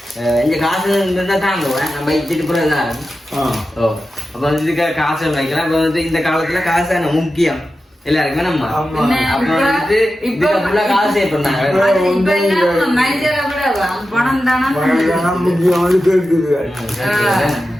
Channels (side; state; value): both; normal; correlation 0.92